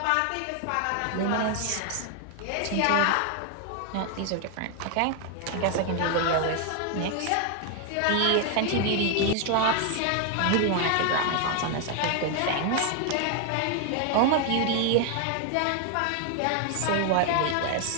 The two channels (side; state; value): both; different; correlation 0.00